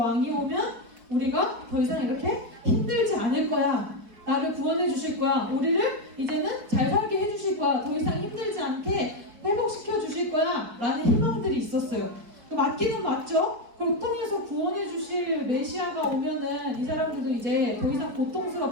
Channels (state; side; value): late; left; 4.8 ms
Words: 오면 우리가 더 이상 이렇게 힘들지 않을 거야. 나를 구원해 주실 거야. 우리를 이제는 잘 살게 해 주실 거야. 더 이상 힘들지 않게 회복시켜 주실 거야. 라는 희망들이 있었어요. 맞기는 맞죠? 고통에서 구원해 주실 메시아가 오면은 이 사람들도 이제 더 이상